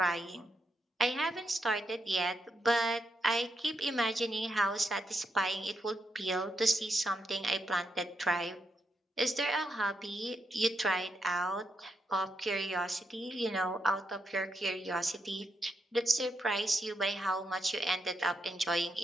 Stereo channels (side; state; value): both; normal; correlation 0.82